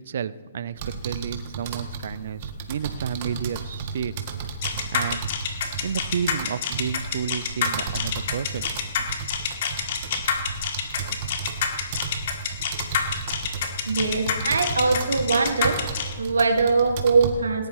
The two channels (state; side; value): inverted; both; correlation -0.66